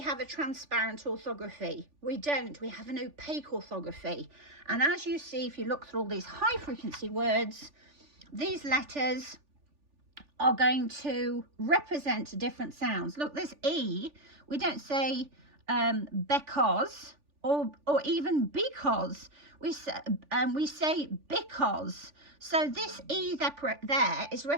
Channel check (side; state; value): left; late; 3.4 ms